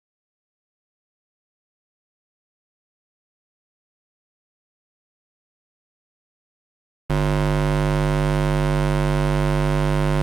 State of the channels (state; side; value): quieter; left; 5.0 dB